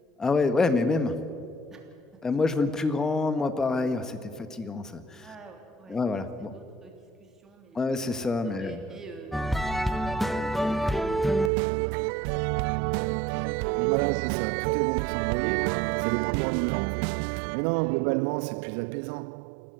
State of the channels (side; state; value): left; drops out; at 11.5 s